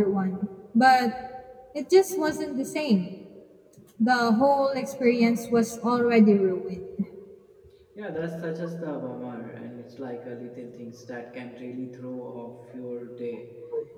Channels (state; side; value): identical; both; correlation 1.00